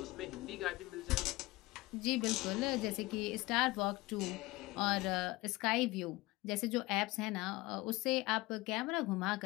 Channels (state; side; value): quieter; right; 20.9 dB